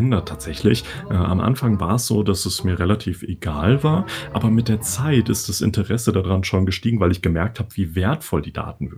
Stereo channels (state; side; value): identical; both; correlation 1.00